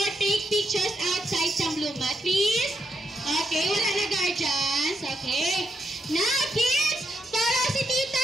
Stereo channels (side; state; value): both; normal; correlation 0.80